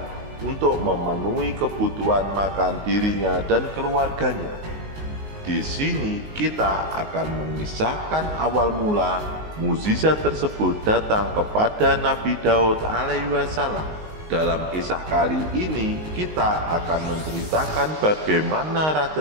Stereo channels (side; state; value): left; late; 19 ms